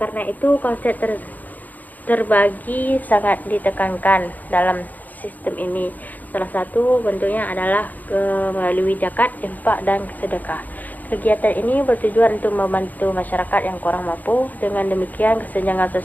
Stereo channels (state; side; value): late; right; 0.082 ms